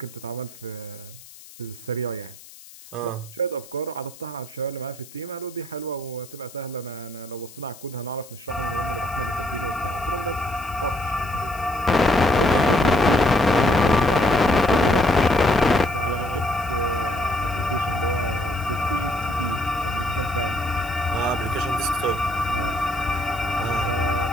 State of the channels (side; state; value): left; noise; hiss, 20 dB below the sound